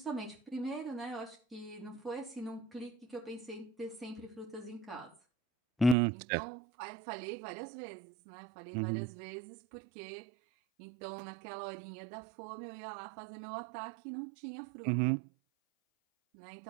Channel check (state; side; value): drops out; left; at 6.0 s